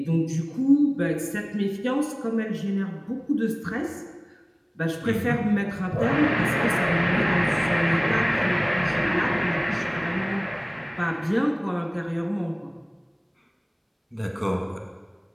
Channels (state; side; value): identical; both; correlation 1.00